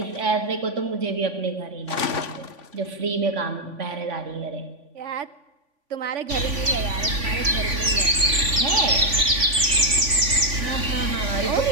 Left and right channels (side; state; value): left; late; 3.5 ms